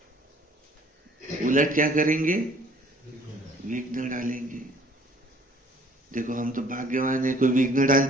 उलट क्या करेंगे, विघ्न डालेंगे। देखो हम तो भाग्यवान है, कोई विघ्न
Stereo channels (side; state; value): both; normal; correlation 0.56